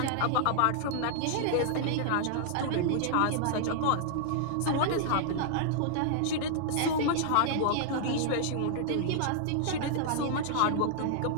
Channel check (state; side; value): different; both; correlation -0.01